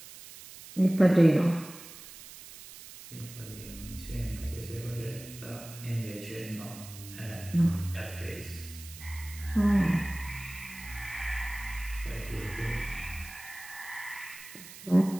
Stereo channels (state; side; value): noise; right; hiss, 15 dB below the sound